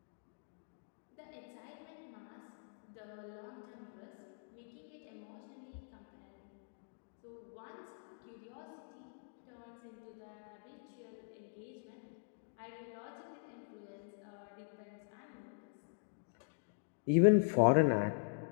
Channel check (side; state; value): right; silent; digital silence